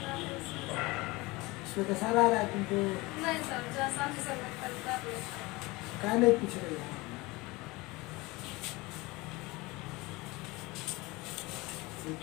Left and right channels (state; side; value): quieter; right; 22.7 dB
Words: इसमें तो सारा आ रहा है तुमको, क्या नहीं पूछ रही है?